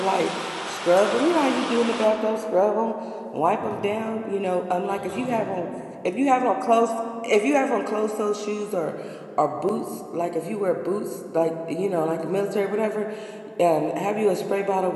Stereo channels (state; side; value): identical; both; correlation 1.00